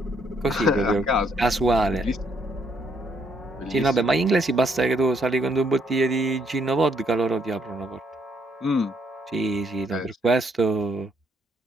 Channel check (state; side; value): normal; both; correlation 0.71